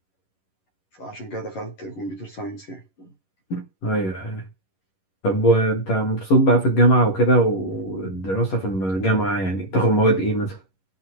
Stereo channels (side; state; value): right; late; 11 ms